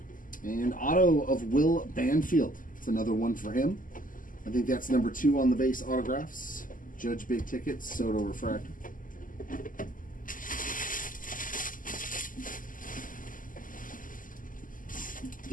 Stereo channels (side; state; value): right; late; 0.39 ms